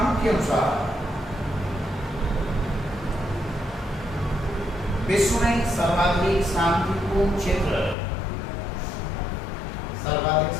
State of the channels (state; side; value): drops out; right; at 8.0 s